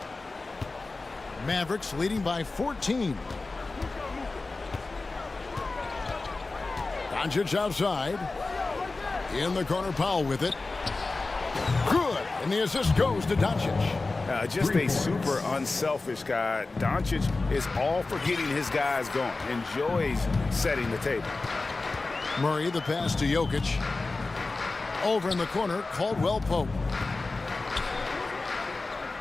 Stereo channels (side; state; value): right; quieter; 3.5 dB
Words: Mavericks leading by 14. Doncic outside. In the corner, Powell with it. Good. And the assist goes to Doncic. Just a super unselfish guy. Doncic is all for getting his guys going. Enjoys setting the table. Murray, the pass to Jokic. Over in the corner, Caldwell Pope.